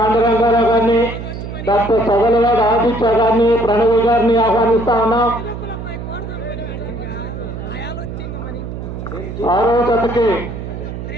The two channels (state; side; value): noise; right; hum, 8 dB below the sound